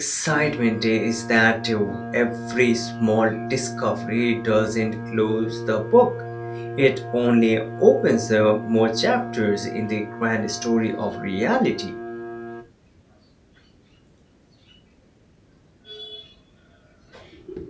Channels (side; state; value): both; identical; correlation 1.00